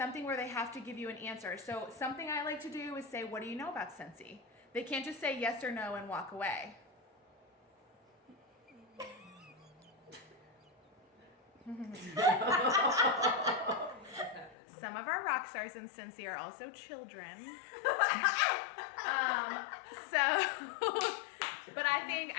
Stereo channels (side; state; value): right; drops out; at 14.6 s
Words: where they have to give you an answer. So something I like to do is say, "What do you know about Scentsy?" They can't just say yes or no and walk away. Some of our rock stars in Scentsy are also children. But